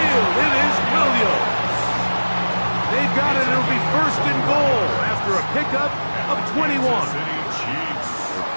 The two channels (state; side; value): inverted; both; correlation -1.00